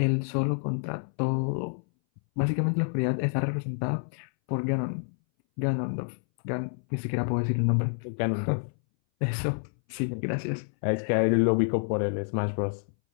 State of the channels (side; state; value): right; silent; 59 dB below the other